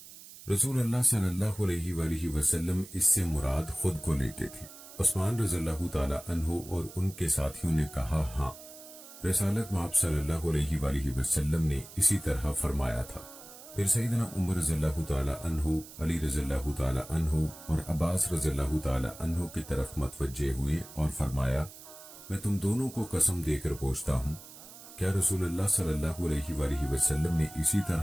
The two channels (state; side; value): noise; right; hiss, 17 dB below the sound